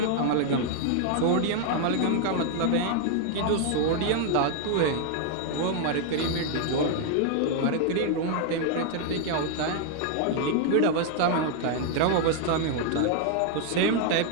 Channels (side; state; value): both; different; correlation 0.00